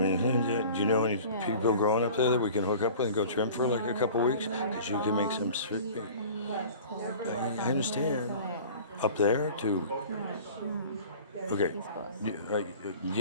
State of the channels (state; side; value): inverted; both; correlation -0.42